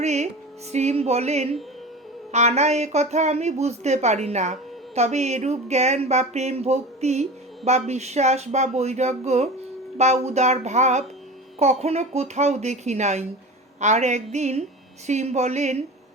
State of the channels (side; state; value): both; normal; correlation 0.32